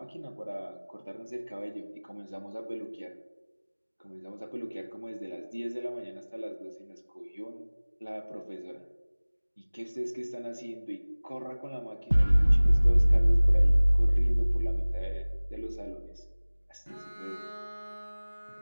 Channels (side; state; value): both; inverted; correlation -1.00